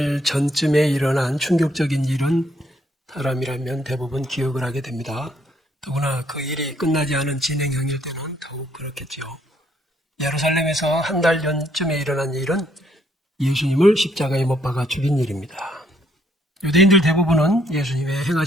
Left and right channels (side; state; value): both; normal; correlation 0.69